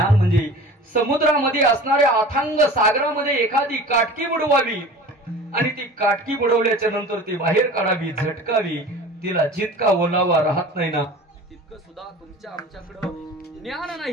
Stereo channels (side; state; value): both; normal; correlation 0.39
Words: म्हणजे समुद्रामध्ये असणाऱ्या अथांग सागरामध्ये एखादी काटकी बुडवावी आणि ती काटकी बुडवल्याच्या नंतर ती बाहेर काढावी, झटकावी. तिला जितका ओलावा राहत नाही ना तितकं सुद्धा तुमच्या आमच्याकडं ज्ञान